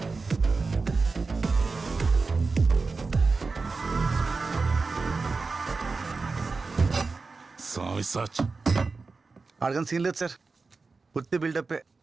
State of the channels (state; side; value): quieter; left; 4.2 dB